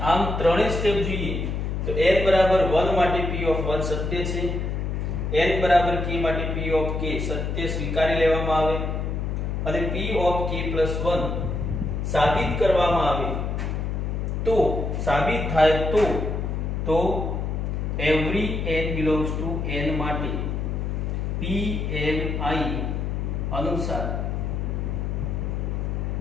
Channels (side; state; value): left; noise; hum, 1 dB below the sound